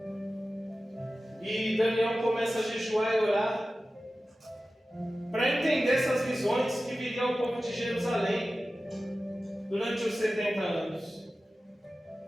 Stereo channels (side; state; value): both; normal; correlation 0.95